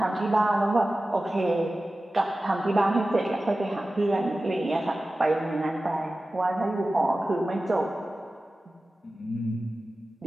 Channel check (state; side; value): normal; both; correlation 0.95